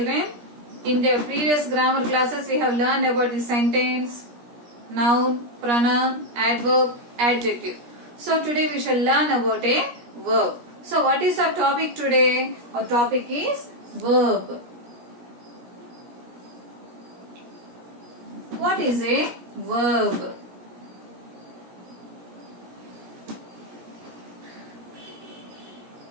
In the previous grammar classes, we have learned about the sentence, noun, pronoun, adverb, adjective. So today we shall learn about a verb. So what is our topic today? Our topic is verb. What is a verb?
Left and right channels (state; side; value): late; left; 17 ms